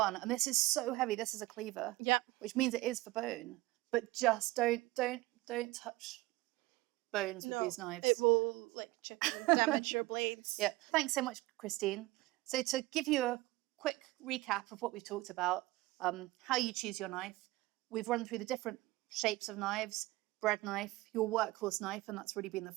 and this is so heavy. This is a cleaver. Yeah. Which means it is for bone, but just don't touch bones with these knives. It will like chip and damage your blades. Yeah. Thanks so much, Christine. So to give you a quick recap of what we've talked about, how you choose your knife, we've run through the different shapes of knives, bread knife, your workhorse knife, and that's really been the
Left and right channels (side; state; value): left; quieter; 19.7 dB